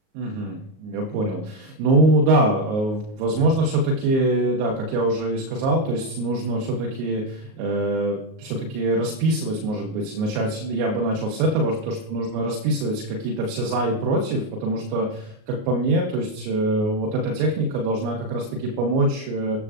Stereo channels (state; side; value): late; left; 38 ms